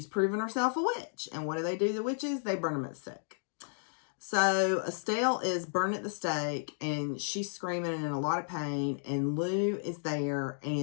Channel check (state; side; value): silent; right; digital silence